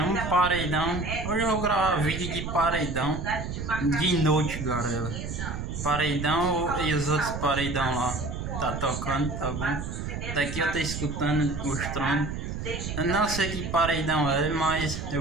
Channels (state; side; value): noise; right; rumble, 5 dB below the sound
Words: um paredão. Hoje eu vou gravar vídeo de paredão de noite, galera. Paredão e os outros paredão lá. Tá tocando, tá bom? Daqui eu tô escutando os tronos. Eu não sei que paredão é, mas